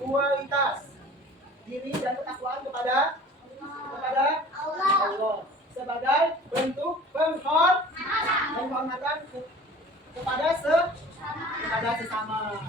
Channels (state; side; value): normal; both; correlation 0.45